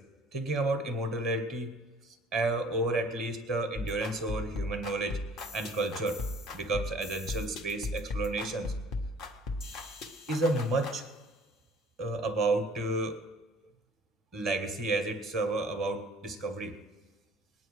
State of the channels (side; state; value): both; normal; correlation 0.54